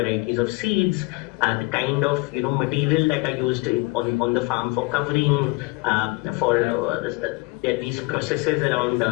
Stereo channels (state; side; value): quieter; right; 25.0 dB